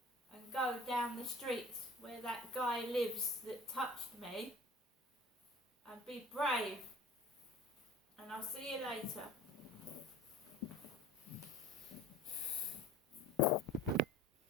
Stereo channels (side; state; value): both; normal; correlation 0.44